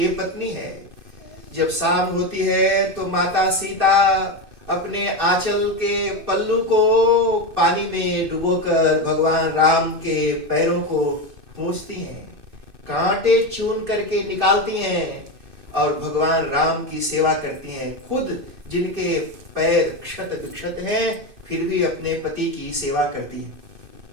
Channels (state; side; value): late; left; 2.6 ms